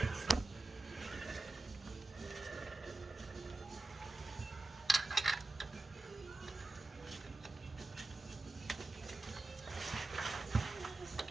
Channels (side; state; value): left; quieter; 3.1 dB